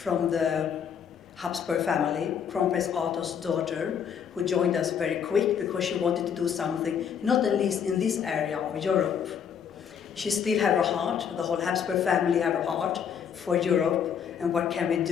the Habsburg family, Crown Prince Arthur's daughter, who joined us very quick because she wanted to do something, not at least in this area of Europe. She still have her heart, the whole Habsburg family have her heart for Europe, and what can we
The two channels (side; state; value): right; quieter; 7.8 dB